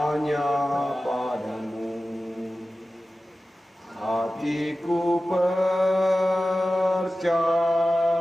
padamu. Hatiku percaya,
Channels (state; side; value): normal; both; correlation 0.95